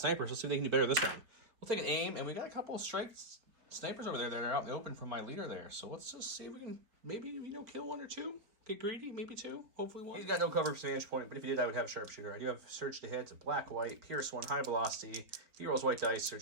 Let's see if they can do better this time. We'll take an aim, and we got a couple of snipers over there that are out in the open from my leader there. So let's just see if we can maybe, kill 1 or 2. Get greedy, maybe 2, hopefully 1. He's got no cover for vantage point, but if he did, I would have sharpshooter. I do have surge to hit. It's a black, white, pierce 1, high velocity. He rolls white dice,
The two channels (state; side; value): late; left; 4.1 ms